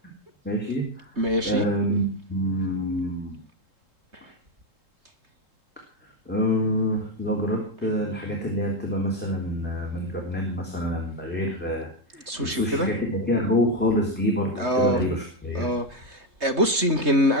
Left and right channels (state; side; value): late; left; 3.2 ms